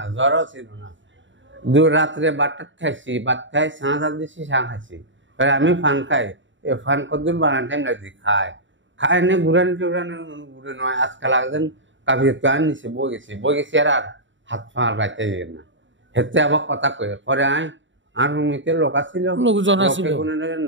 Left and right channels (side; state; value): left; late; 0.55 ms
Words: জ্বরও ছিল না। রাত্রে বাটার খাইছি, ভাত খাই, সাঁঝ দিচ্ছি, চা খাইছি। আমি ফান খাই, ফান কতদিন বানান টাইম লাগছি খাই নে ঘুরানি টুরানি ঘুরে নয়। আজকাল একজন কাবির গান নিচে বই গেছি আর হাত পা গাইতে যাই না। হেতে আবার কথা কই পরে আর রুমিতে লোক ছিল,